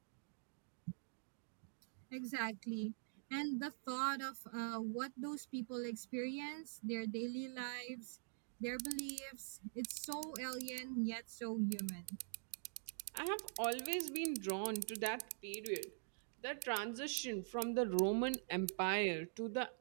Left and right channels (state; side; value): silent; left; digital silence